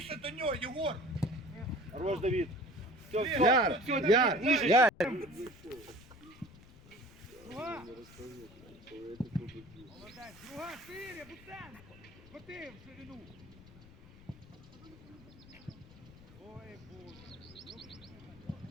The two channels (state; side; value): noise; left; rumble, 20 dB below the sound